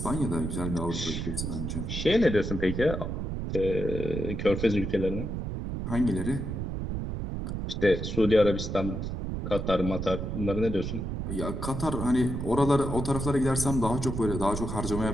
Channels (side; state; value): right; noise; rumble, 4 dB below the sound